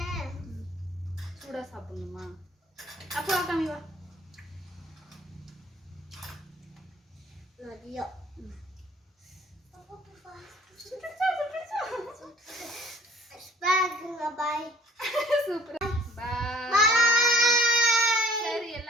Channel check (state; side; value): normal; both; correlation 0.54